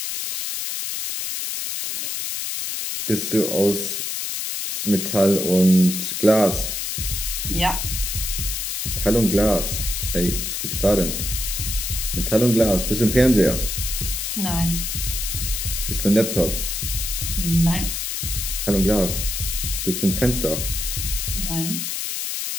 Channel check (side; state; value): left; noise; hiss, 3 dB below the sound